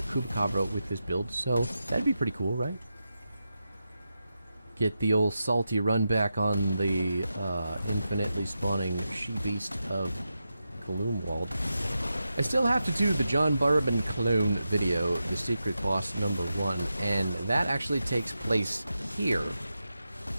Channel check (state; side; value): inverted; both; correlation -0.89